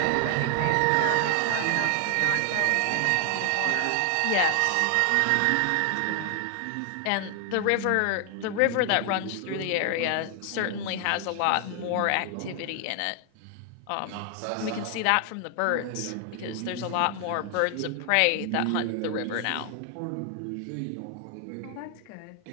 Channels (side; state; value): both; different; correlation 0.00